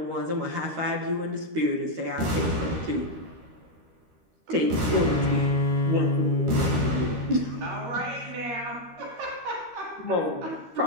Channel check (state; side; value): late; left; 13 ms